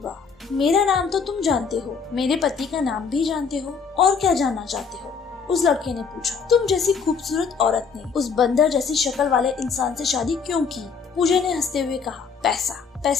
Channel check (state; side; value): quieter; right; 5.7 dB